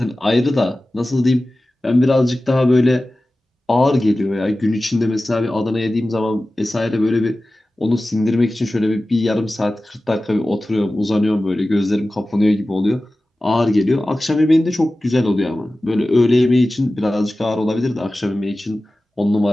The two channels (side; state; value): both; normal; correlation 0.96